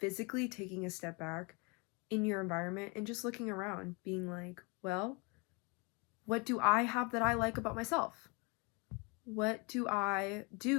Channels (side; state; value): right; quieter; 30.3 dB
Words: taking a step back in your environment and just looking around, being like, well, what do I have that I like about myself? What do I